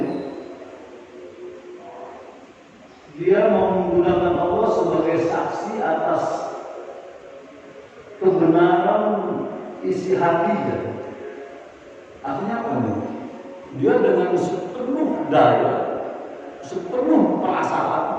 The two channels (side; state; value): both; identical; correlation 1.00